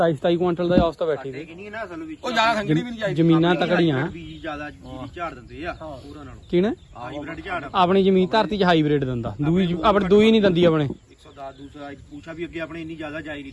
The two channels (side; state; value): both; identical; correlation 1.00